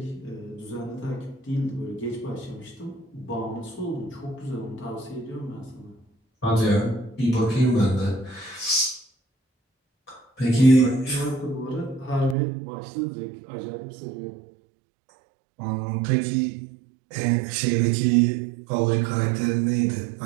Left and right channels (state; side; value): drops out; left; at 12.4 s